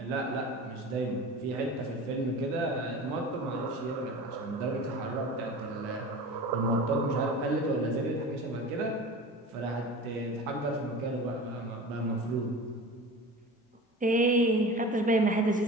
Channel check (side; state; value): both; normal; correlation 0.35